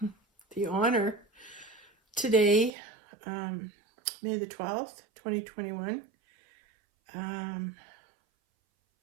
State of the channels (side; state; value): left; drops out; at 2.7 s